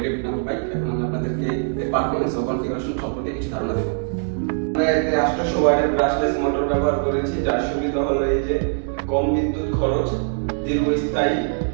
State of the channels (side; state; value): left; silent; 64 dB below the other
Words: নামক বাইক। এখন আমি আপনাদেরকে এর পারফরম্যান্স ও কনফিগারেশন সম্পর্কে কিছু ধারণা দেব। আমরা এতে 800 ওয়াটের ব্রাশলেস মোটর ব্যবহার করেছি, যার সুবিধা হলো এই যে কম বিদ্যুৎ খরচ, দীর্ঘস্থায়ী,